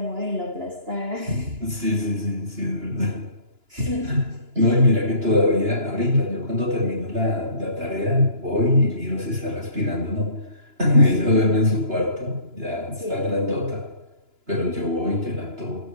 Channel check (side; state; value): left; late; 2.9 ms